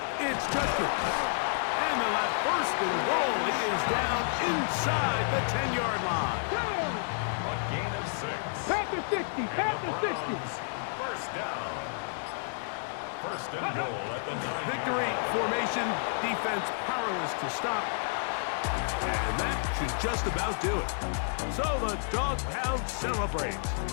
it's Judkins. And they'll have first and goal. It is down inside the 10-yard line. Down. A gain of 6. Past the 60. Past the 60. First down. First and goal at the 9. Victory formation, defense powerless to stop. And that should just about do it. So the Dog Pound celebrates.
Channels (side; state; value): right; silent; digital silence